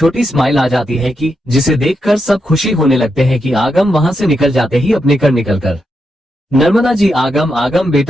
स्माइल आ जाती है कि जिसे देखकर सब खुशी होने लगते हैं कि आगम वहां से निकल जाते ही अपने कर निकलकर। नर्मदा जी आगम आगम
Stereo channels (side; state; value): both; normal; correlation 0.84